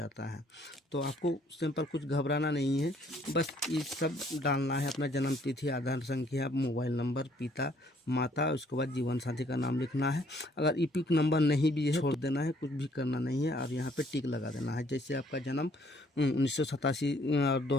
है, तो आपको सिंपल कुछ घबराना नहीं है। बस ये सब डालना है, अपना जन्म तिथि, आधार संख्या, मोबाइल नंबर, पिता माता, उसके बाद जीवन साथी का नाम लिखना है। अगर ईपिक नंबर नहीं भी है, छोड़ देना है, कुछ भी करना नहीं है। और यहाँ पे टिक लगा देना है। जैसे आपका जन्म 1987 और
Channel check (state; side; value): normal; both; correlation 0.63